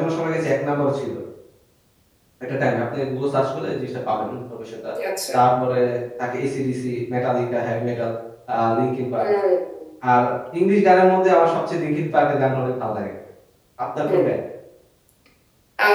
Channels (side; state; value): both; identical; correlation 1.00